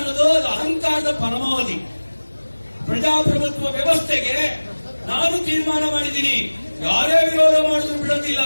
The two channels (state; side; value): inverted; both; correlation -1.00